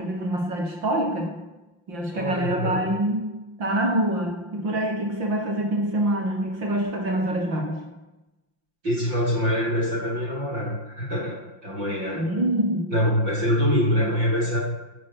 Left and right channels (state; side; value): late; left; 5.8 ms